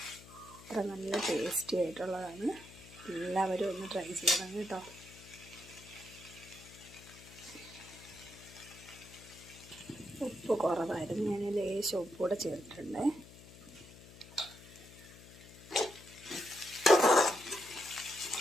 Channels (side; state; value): left; noise; hum, 19 dB below the sound